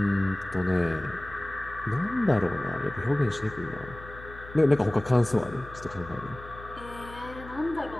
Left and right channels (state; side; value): noise; left; hum, 16 dB below the sound